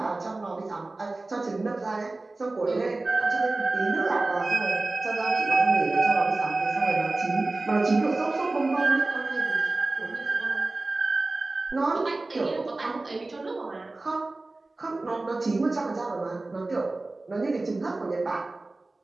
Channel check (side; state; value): left; quieter; 3.1 dB